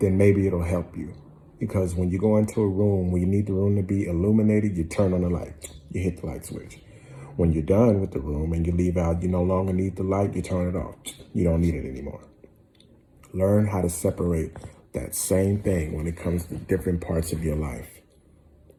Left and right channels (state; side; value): identical; both; correlation 1.00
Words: maybe it'll help you. Because when you go into a room where you need the room to be illuminated, you turn on the light, you hit the light switch. When you're done with the room and you leave out, you no longer need the light, you turn it off. You don't need it anymore. Learn how to separate that same thing when it comes to different parts of your life.